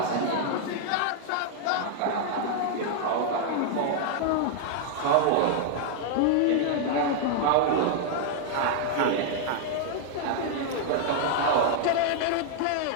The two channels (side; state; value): both; different; correlation 0.00